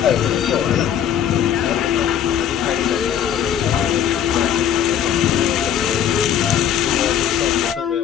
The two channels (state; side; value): quieter; right; 9.4 dB